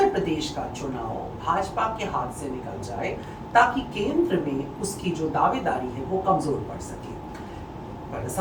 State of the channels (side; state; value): both; identical; correlation 1.00